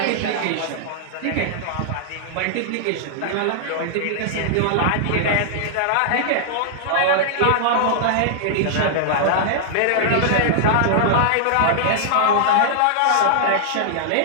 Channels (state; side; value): different; both; correlation -0.01